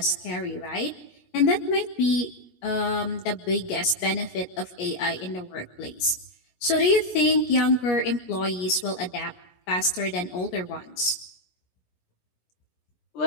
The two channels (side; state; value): right; late; 17 ms